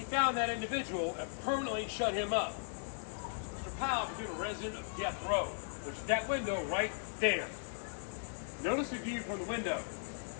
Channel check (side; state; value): right; silent; 53 dB below the other